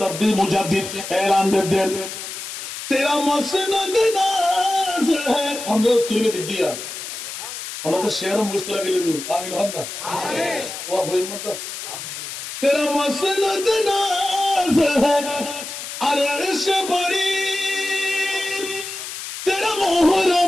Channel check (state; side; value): noise; left; hiss, 8 dB below the sound